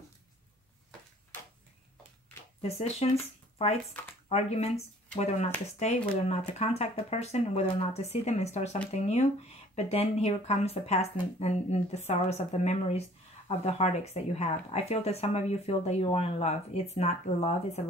Decisions, fights, arguments, whether or not to stay, whether or not to contact the person, whether or not to see them and start something new. But then here comes the past and the sorrows of the memories of the heartaches that you have. I feel that some of you feel that you are in love. It's not love, it's a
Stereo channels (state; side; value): normal; both; correlation 0.54